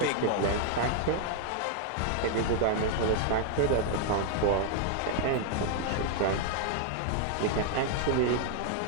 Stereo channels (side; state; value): both; different; correlation 0.00